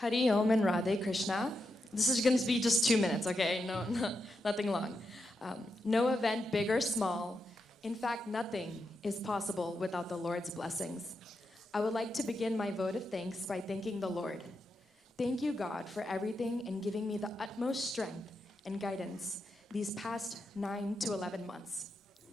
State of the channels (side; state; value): both; normal; correlation 0.85